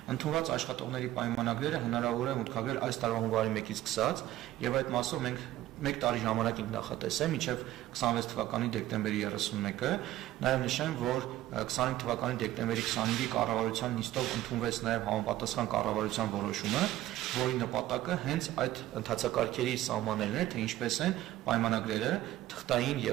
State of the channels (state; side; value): quieter; left; 14.6 dB